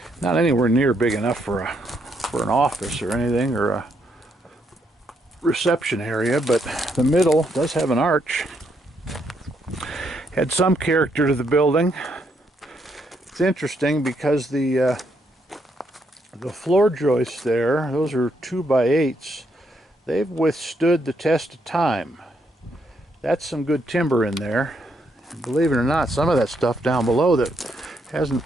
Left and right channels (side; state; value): both; normal; correlation 0.75